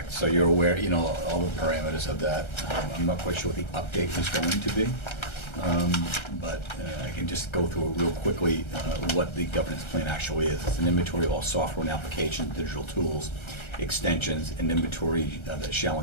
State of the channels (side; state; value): right; late; 1.3 ms